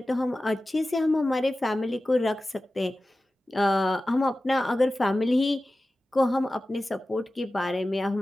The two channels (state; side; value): normal; both; correlation 0.95